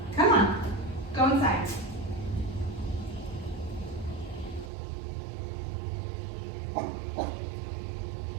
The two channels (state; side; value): drops out; left; at 4.7 s